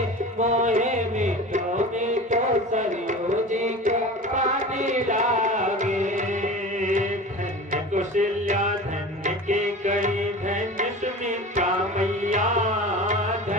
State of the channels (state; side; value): normal; both; correlation 0.35